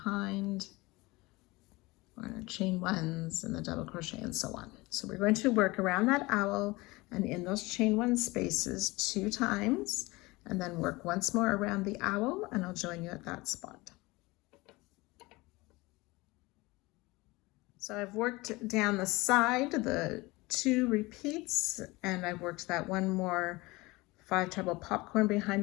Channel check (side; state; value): right; quieter; 22.4 dB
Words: or chain 1s and the double crochet and so on. So we're going to work around that owl and in those chain 1 spaces 2 times, and then work once more around the owl, and I'll join you at that spot. So I've worked down the side, the 2 repeats, and I've worked that 1 more 5 treble popcorn